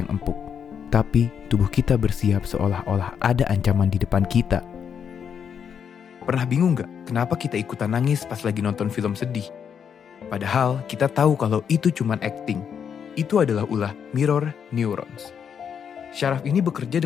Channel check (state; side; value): quieter; right; 7.5 dB